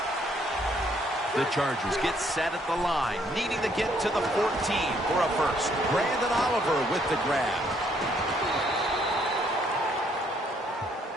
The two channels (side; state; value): both; normal; correlation 0.68